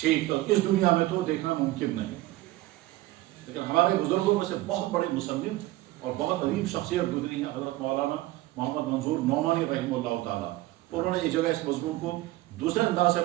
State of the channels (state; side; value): quieter; left; 17.7 dB